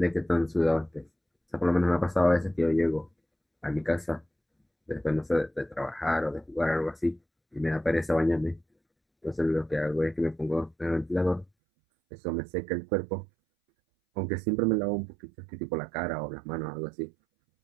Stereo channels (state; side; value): drops out; left; at 11.5 s